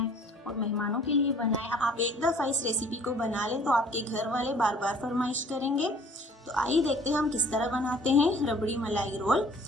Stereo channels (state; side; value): normal; both; correlation 0.53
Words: और मेहमानों के लिए बनाएं। आप एक दफ़ा इस रेसिपी को बना लें तो आपके घर वाले बार बार फरमाइश करेंगे। तो आइए देखते हैं हम किस तरह बनाते हैं रबड़ी मलाई रोल।